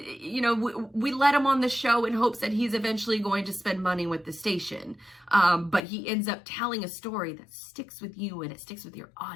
we let him on the show in hopes that he's eventually going to spend money with the station. But he ends up telling a story that sticks with you and it sticks with your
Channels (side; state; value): right; drops out; at 5.8 s